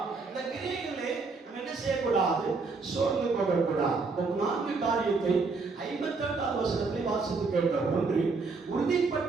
இந்த கிரியைகளை நம்ம என்ன செய்யக்கூடாது? சோர்ந்து போகக்கூடாது. 4 காரியத்தை 58ஆம் வசனத்தில் வாசித்து கேட்டோம். ஒன்று,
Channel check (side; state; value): left; quieter; 4.2 dB